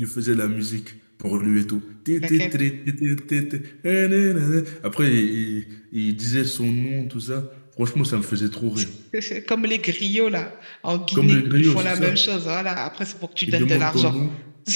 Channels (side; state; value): both; inverted; correlation -1.00